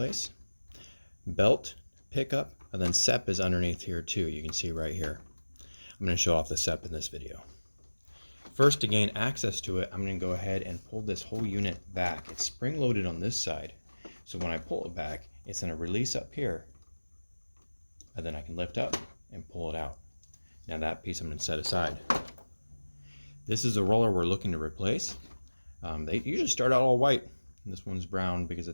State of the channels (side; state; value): both; inverted; correlation -1.00